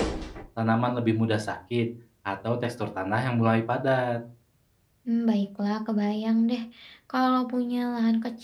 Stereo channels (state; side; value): identical; both; correlation 1.00